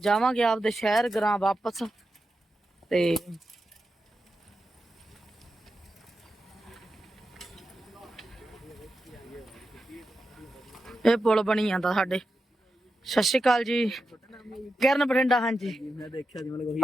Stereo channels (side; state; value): both; normal; correlation 0.90